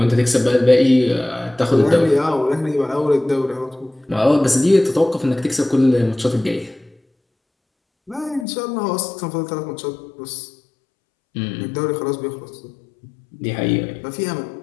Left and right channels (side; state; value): right; drops out; at 8.5 s